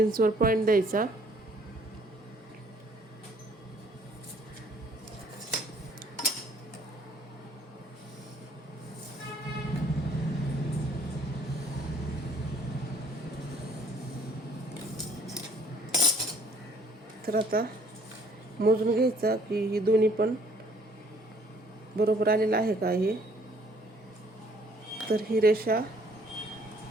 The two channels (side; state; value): both; normal; correlation 0.60